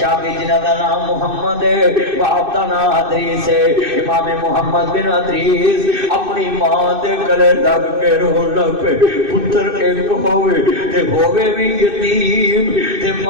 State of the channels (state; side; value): late; left; 2.6 ms